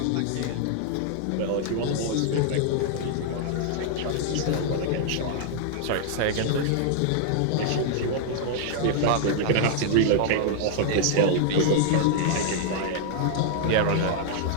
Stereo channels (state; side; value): different; both; correlation -0.01